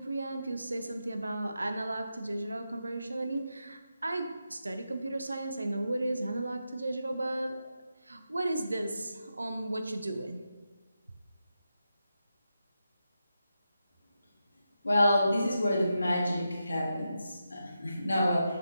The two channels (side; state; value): both; inverted; correlation -0.87